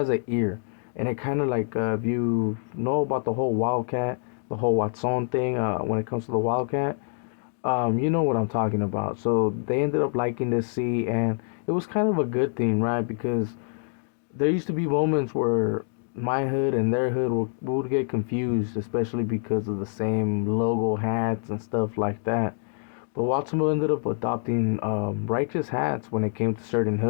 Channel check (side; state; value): right; silent; 61 dB below the other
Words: an ear, and it kind of like if you know about the whole Wildcat, the whole Watson thing, when it comes to the Wildcat. You know what I'm talking about. So they ended up liking this C, and it was kind of a good thing, right? Because there used to be moments where my hood and their hood would get confused, especially because of the same logo hats and stuff like that. But Watsonville ended up adopting righteous hats when it came to certain